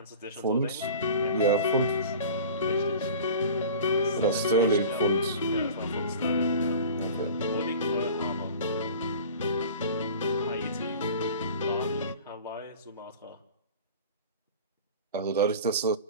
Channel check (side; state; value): both; inverted; correlation -0.39